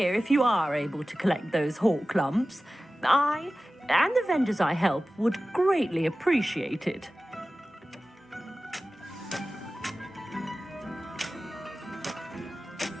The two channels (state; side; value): normal; both; correlation 0.96